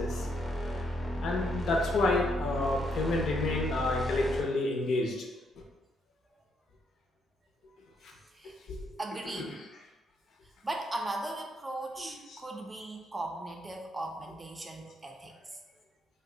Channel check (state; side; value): normal; both; correlation 0.75